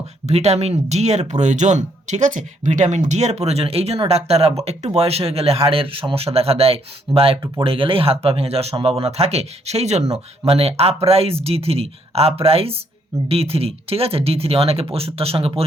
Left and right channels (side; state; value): both; normal; correlation 0.70